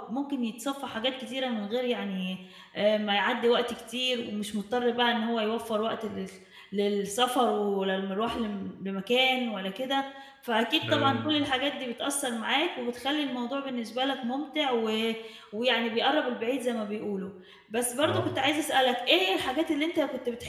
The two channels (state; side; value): identical; both; correlation 1.00